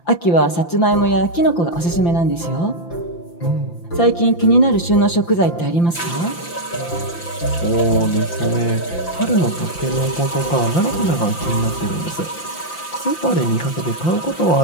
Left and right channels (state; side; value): late; right; 5.9 ms